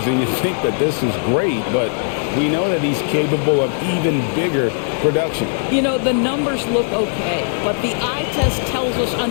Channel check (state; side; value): silent; right; digital silence